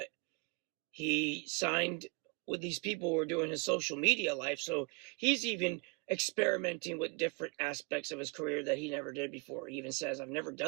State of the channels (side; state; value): left; quieter; 31.2 dB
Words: he signed with these people who were doing his social media life, so he's even experimenting with different aspects of his career that he never did before. He even says, I've never